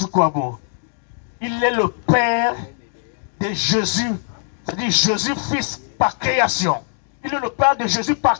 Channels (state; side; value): silent; right; digital silence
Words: Il est le père de Jésus. C'est-à-dire Jésus fils par création. Il est le père de Jésus